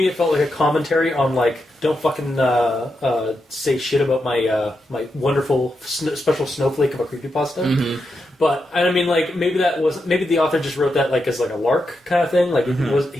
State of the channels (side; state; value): both; normal; correlation 0.85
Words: it felt like a commentary on like, don't fucking say shit about my wonderful special snowflake of a creepypasta. Mm-hmm. But I mean, like, maybe the author just wrote that like as like a lark kind of thing. Like